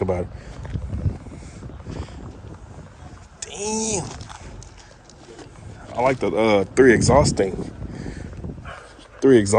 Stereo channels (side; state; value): both; identical; correlation 1.00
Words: about it? Damn. I like the three exhaust